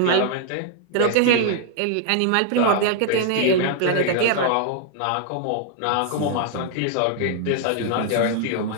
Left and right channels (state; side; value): different; both; correlation 0.00